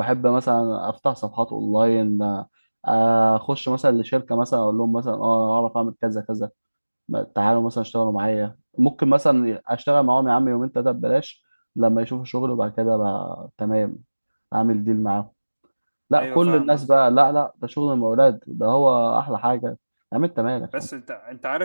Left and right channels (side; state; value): both; inverted; correlation -1.00